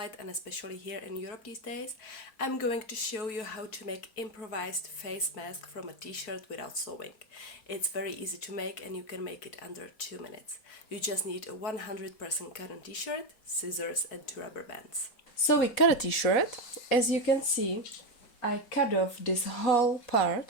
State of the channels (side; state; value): right; late; 4.6 ms